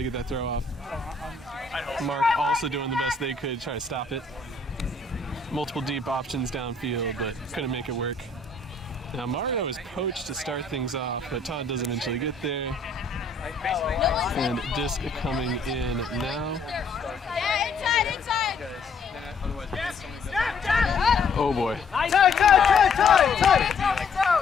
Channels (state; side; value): quieter; right; 4.0 dB